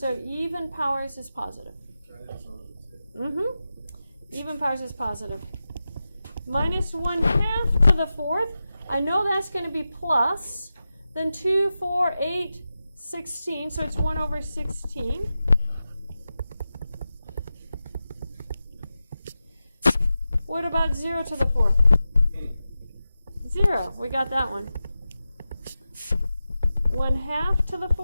even powers is positive. Even powers is positive. Minus 1/2 to the 4th. I know that's going to be plus. Then 2, 4, 8, 16. So it's 1 over 16. What about 0 to the 4th? 0. We got that one. 1/2 to the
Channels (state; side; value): inverted; both; correlation -0.93